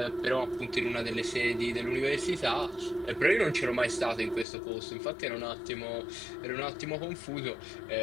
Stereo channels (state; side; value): drops out; right; at 4.5 s